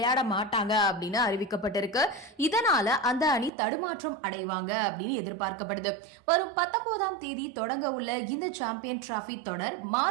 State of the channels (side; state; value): left; drops out; at 3.5 s